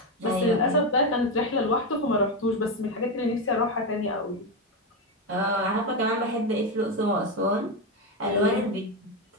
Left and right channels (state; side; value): normal; both; correlation 0.11